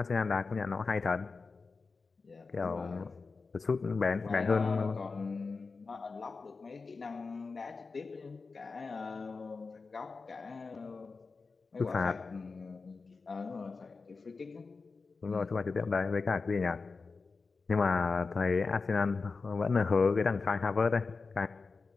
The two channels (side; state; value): right; quieter; 4.3 dB